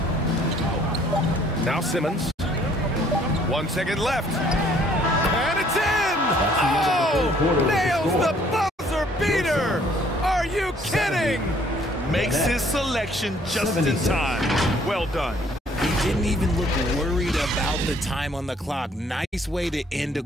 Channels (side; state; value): both; normal; correlation 0.61